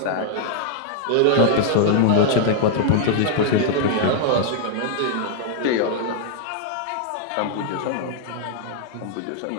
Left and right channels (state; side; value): different; both; correlation -0.01